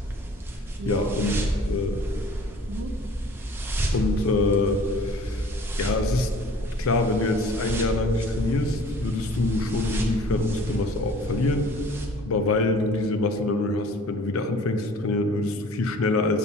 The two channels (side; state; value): both; normal; correlation 0.49